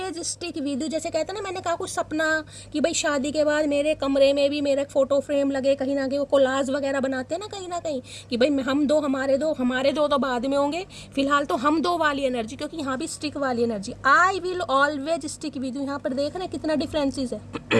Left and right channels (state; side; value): identical; both; correlation 1.00